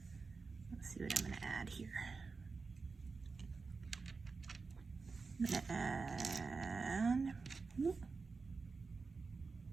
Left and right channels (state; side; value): quieter; left; 4.5 dB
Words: Let's see what I'm going to add here. I'm going to add